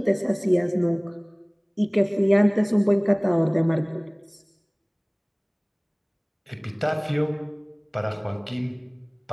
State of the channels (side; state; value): both; identical; correlation 1.00